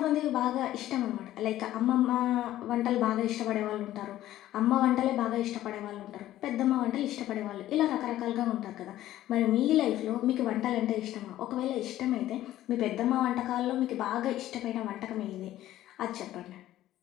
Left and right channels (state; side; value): quieter; right; 13.9 dB